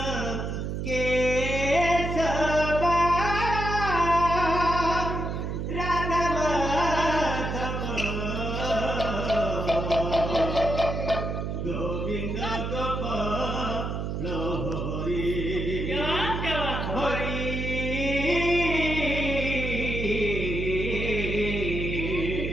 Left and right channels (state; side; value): noise; right; hum, 3 dB below the sound